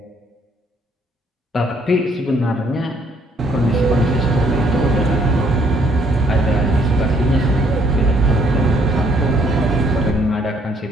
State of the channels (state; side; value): normal; both; correlation 0.65